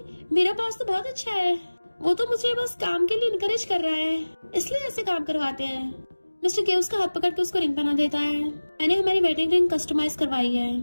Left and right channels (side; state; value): both; inverted; correlation -1.00